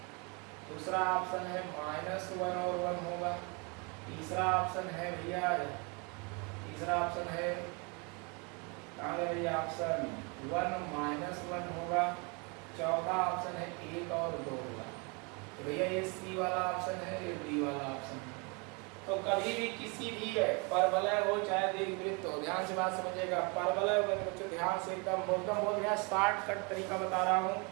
दूसरा ऑप्शन है -1 और 1 होगा, तीसरा ऑप्शन है भैया, कहाँ गया भैया ऑप्शन 1 -1 होगा, चौथा ऑप्शन है 1 और 2 होगा। तो भैया ये सी वाला ऑप्शन है, ये डी वाला ऑप्शन है। तो कभी भी किसी भी परवलय हो चाहे दीर्घवृत्त हो, ध्यान से बात समझिएगा, परवलय हो बच्चों ध्यान से एकदम बोल गया, शॉर्टकट तरीका बता रहा हूँ,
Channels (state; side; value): quieter; left; 31.5 dB